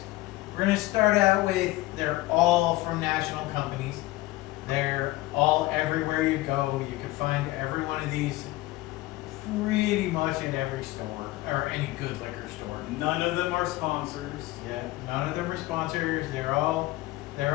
We're going to start out with, they're all from national companies. They're all everywhere you go. You can find every one of these pretty much at every store, or any good liquor store. None of them are sponsors. Yeah, none of them are sponsors. They're all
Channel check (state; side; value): quieter; right; 18.6 dB